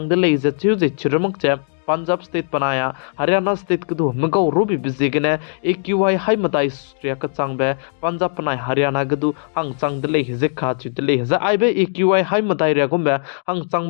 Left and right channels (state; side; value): silent; right; digital silence